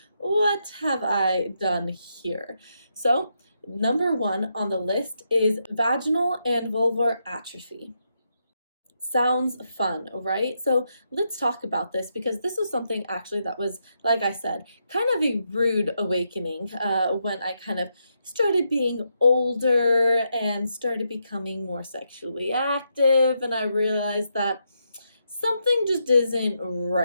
what have I done here? So, number 1 on the list is vaginal and vulvar atrophy. Sounds fun, right? So let's talk about this because this was something actually that was, like I said, kind of a rude awakening when I kind of started being older and started becoming more sexually active. And I realized that something just isn't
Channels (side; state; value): both; inverted; correlation -0.81